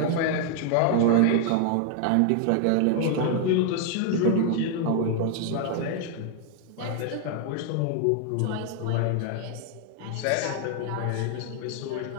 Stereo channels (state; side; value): different; both; correlation 0.00